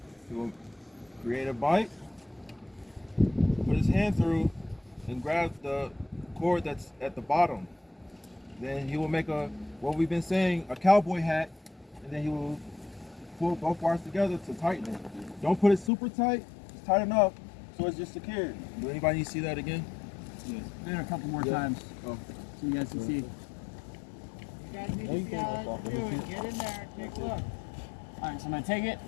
He will create a bite, put his hand through, and grab the cord that's at the bottom. Then he will make what we've been saying, a cowboy hat, and then he will pull both wires together to tighten it. Don't put it super tight, just tight enough so it's just secure. Do anybody need to see that again? Yes. Maybe a couple more times so you guys can see. You guys need to see how it's doing. Get in there and take a look. Alright, so I'm going to take it,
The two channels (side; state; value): right; drops out; at 15.9 s